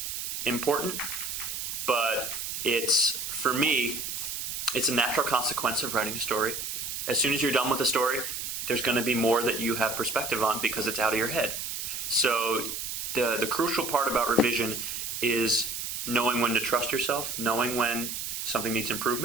important, but for me, it's a natural consequence of writing a story. As soon as you're done with a story, there's going to be more that you have perspective on because it's out of your head. So the crucial part about revision is knowing when to trust yourself, knowing when something needs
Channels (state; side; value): noise; right; hiss, 4 dB below the sound